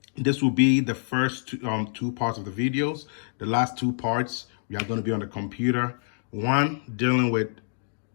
this will be the first 2 parts of the videos. The last 2 parts, we are gonna be on the computer. One, dealing with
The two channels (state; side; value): silent; right; digital silence